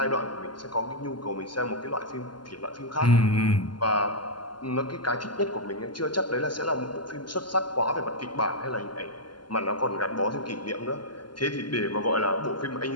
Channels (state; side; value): late; right; 0.71 ms